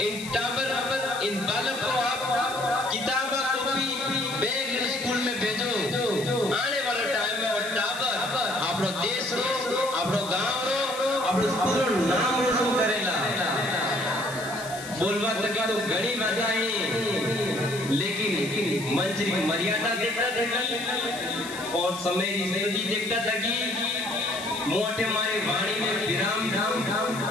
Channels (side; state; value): left; noise; hiss, 13 dB below the sound